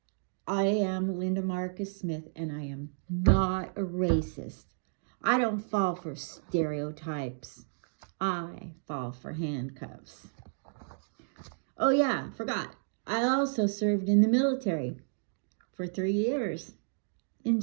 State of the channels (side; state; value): left; silent; digital silence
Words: I am Linda Marcus Smith, and I am not a racist. I don't fall for stereotypes. I fall for handcuffs. Oh yeah, forgot. I also served in the military for 3 years in